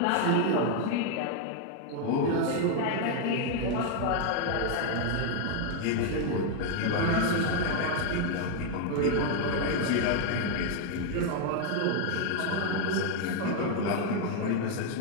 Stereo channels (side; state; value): both; different; correlation 0.00